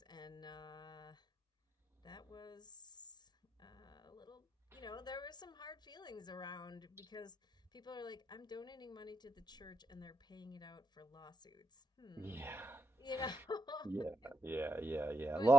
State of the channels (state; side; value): normal; both; correlation 0.84